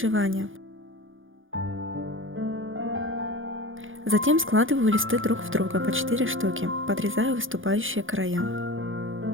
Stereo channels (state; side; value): late; left; 0.58 ms